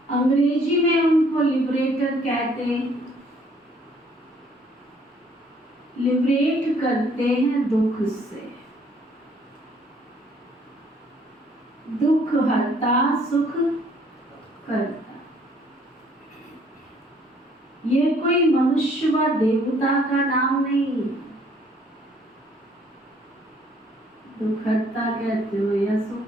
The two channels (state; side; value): normal; both; correlation 0.62